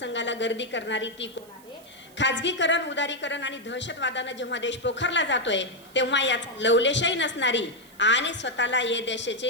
गर्दी करणारी ती कोण आहे? खाजगीकरण, उदारीकरण आणि दहशतवादानं जेव्हा देश पोखरला जातोय, तेव्हा याचा लवलेशही नसणारी आणि स्वतःला या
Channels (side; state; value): right; noise; hiss, 26 dB below the sound